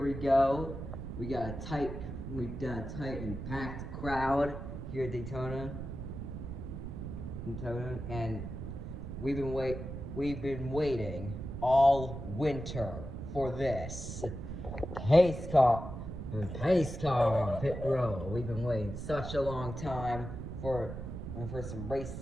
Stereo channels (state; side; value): noise; right; rumble, 7 dB below the sound